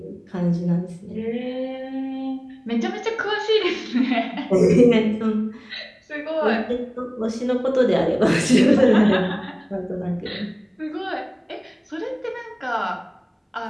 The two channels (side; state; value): both; identical; correlation 1.00